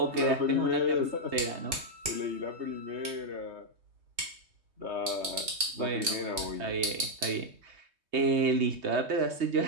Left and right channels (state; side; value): late; left; 3.2 ms